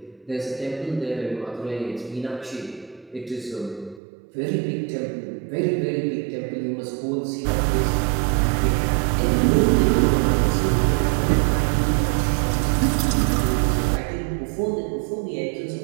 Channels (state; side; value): drops out; left; at 4.0 s